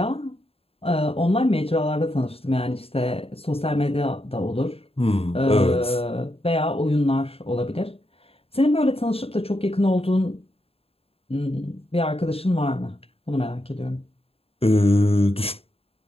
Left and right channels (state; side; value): late; right; 0.28 ms